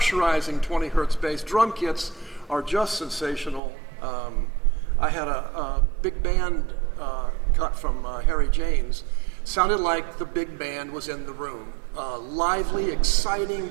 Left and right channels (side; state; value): left; drops out; at 3.6 s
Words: 20 hertz bass. Drum kits are just sensational. I had a big band cut from Harry James. Sounded like the big band was in the room. Lively, exciting,